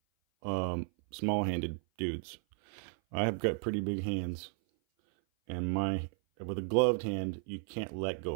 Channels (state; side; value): silent; left; 55 dB below the other